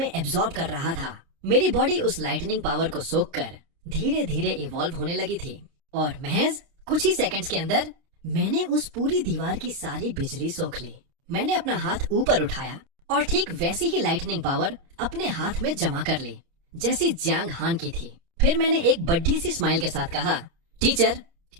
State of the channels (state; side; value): late; left; 29 ms